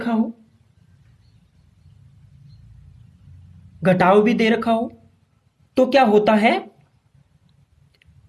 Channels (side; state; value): both; identical; correlation 1.00